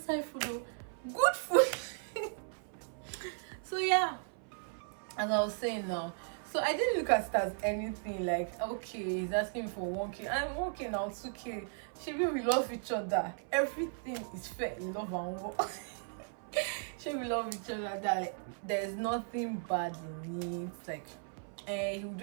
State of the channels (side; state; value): left; silent; 54 dB below the other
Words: food though. Good food. So yeah, as I was saying now, so I didn't look at it as anything. Like okay, he's asking me for 1K. I'm 1K now, 2K. Maybe we love each other. Everything is fair in love and war. Maybe we love each other. That like, there's nothing bad in it. Like he would